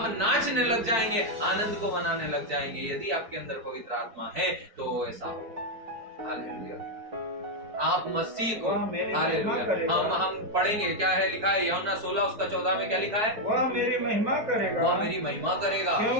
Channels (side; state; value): left; late; 4.6 ms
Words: नाचने लग जाएंगे, आनंद को मनाने लग जाएंगे। यदि आपके अंदर पवित्र आत्मा है तो ऐसा होगा। हालेलुया। आप मसीह को, हालेलुया, हम पढ़ेंगे, क्या है लिखा है यूहन्ना 16 उसका 14 में क्या लिखा है, वह मेरी महिमा करेगा, वह मेरी महिमा करेगा,